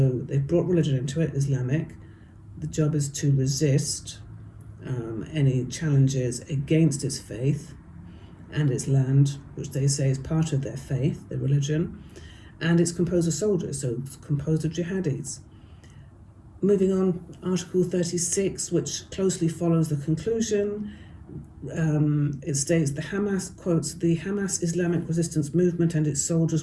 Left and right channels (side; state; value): both; identical; correlation 1.00